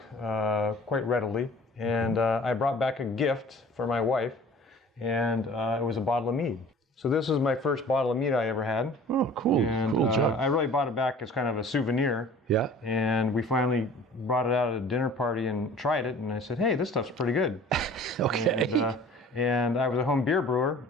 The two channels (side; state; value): both; normal; correlation 0.47